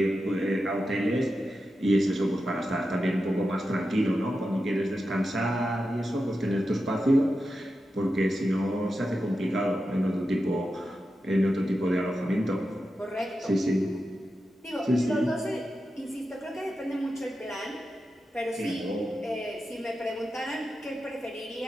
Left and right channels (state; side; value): normal; both; correlation 0.90